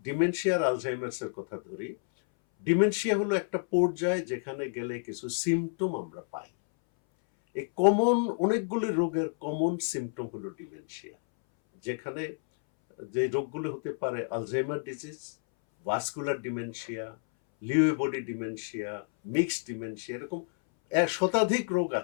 ডিমেনশিয়া আর আলঝাইমার্স এর কথা ধরি, ডিমেনশিয়া হলো একটা পর্যায়ে যেখানে গেলে কিছু সিমটম আমরা পাই। এই কমন অনেকগুলি রোগের কমন সিমটম হলো ডিমেনশিয়া, যেখানে যে রোগগুলো হতে পারে Alzheimer disease, vascular dementia, Lewy body dementia, mixed dementia, এরকম শতাধিক রোগ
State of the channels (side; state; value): right; silent; 58 dB below the other